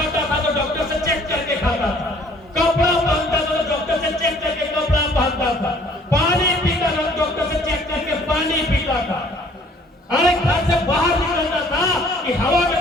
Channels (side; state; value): both; normal; correlation 0.57